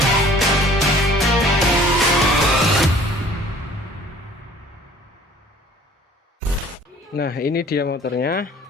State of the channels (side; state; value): both; normal; correlation 0.52